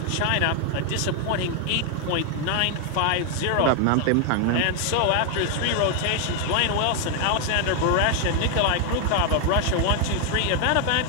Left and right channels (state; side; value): different; both; correlation 0.00